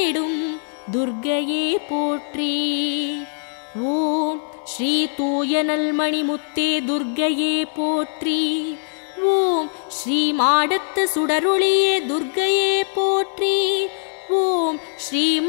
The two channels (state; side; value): silent; right; digital silence